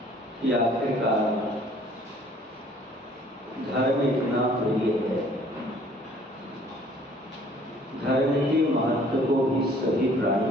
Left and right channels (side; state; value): both; normal; correlation 0.57